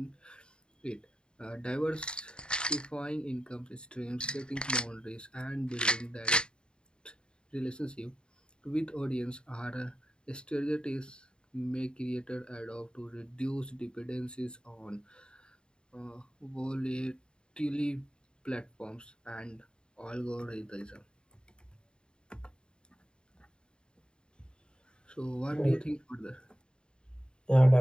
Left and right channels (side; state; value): right; late; 0.050 ms